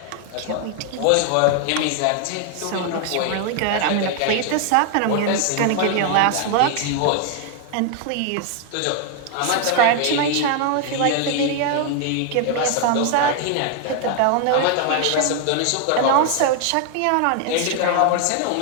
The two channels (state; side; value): different; both; correlation 0.00